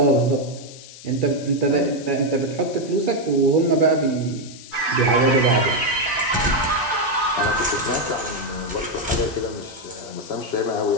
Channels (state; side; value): noise; left; hiss, 17 dB below the sound